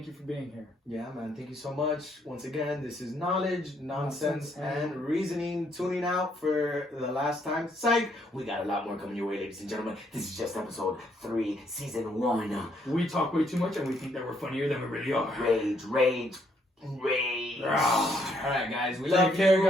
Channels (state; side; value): normal; both; correlation 0.71